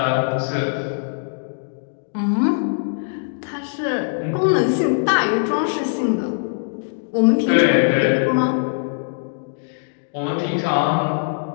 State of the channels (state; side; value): silent; right; digital silence